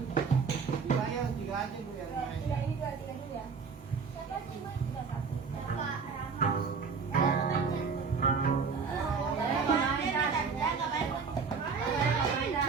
3 ya, 3 aja Bu yang main. Tiga ini dua, tiga dulu ya. Siapa sih Mas? Tiga satu. Bapak Rahmat.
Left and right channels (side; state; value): left; quieter; 5.3 dB